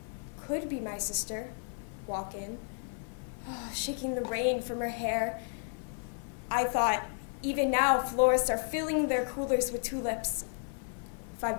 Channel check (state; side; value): silent; right; 56 dB below the other